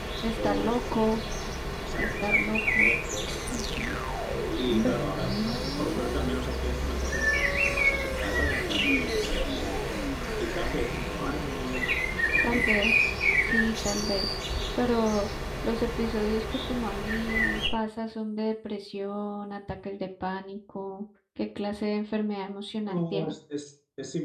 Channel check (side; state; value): both; identical; correlation 1.00